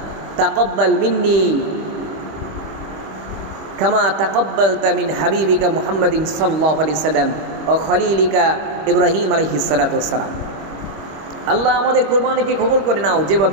তাকাব্বাল মিন্নি কামা তাকাব্বালতা মিন হাবিবিকা মুহাম্মাদিন সাল্লাল্লাহু আলাইহি সাল্লাম ও খলিলিকা ইব্রাহিম আলাইহিস সালাতু ওয়াস সালাম। আল্লাহ আমাদের কুরবানিকে কবুল করে নাও,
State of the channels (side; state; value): left; late; 25 ms